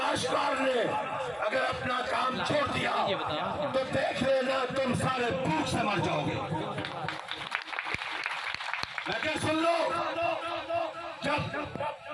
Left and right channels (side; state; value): both; identical; correlation 1.00